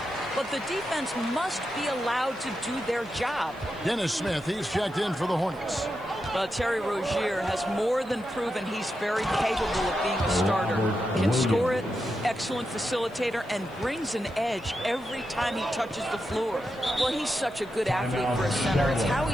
but the defense must be allowed to do their job. Dennis Smith, he's checked in for the Hornets. Well, Terry Rozier has more than proven he's very capable of being a starter. Can score it, excellent facilitator, and brings an edge every time he touches the floor. Well, he's such a good athlete for a center. It's how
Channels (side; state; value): right; noise; hiss, 29 dB below the sound